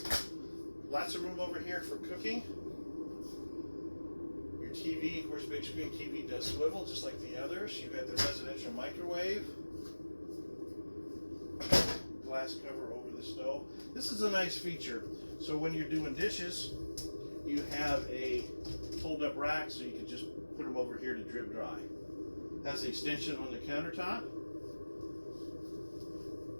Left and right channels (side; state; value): both; inverted; correlation -1.00